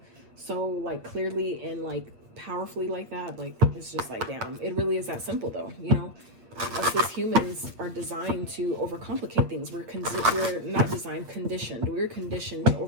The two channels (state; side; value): late; left; 8.6 ms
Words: so like clearly and like powerfully like that. Like, it's just like, damn, it really is that simple though, you know. Us as humans are designed to overcomplicate things. We're not designed, conditioned. We're conditioned to